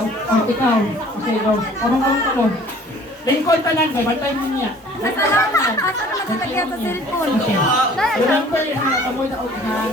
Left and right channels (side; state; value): both; normal; correlation 0.52